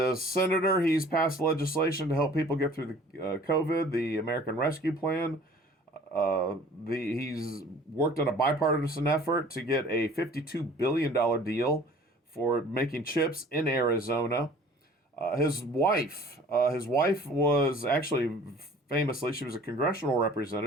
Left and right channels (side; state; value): both; normal; correlation 0.49